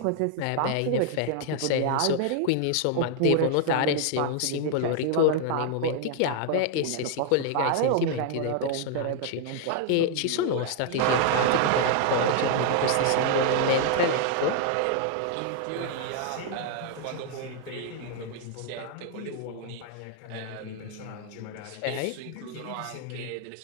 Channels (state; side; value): different; both; correlation 0.00